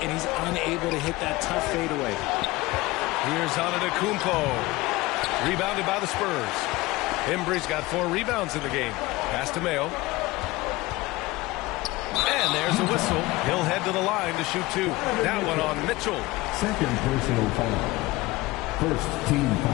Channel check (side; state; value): right; quieter; 20.2 dB